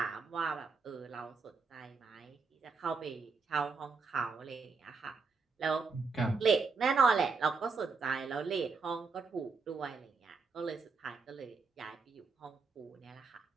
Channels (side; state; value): left; quieter; 4.7 dB